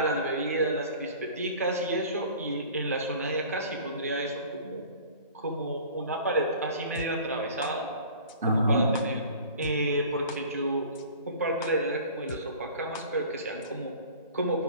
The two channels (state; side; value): inverted; both; correlation -0.44